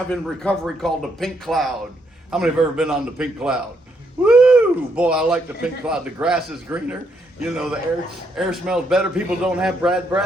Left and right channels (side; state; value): both; normal; correlation 0.75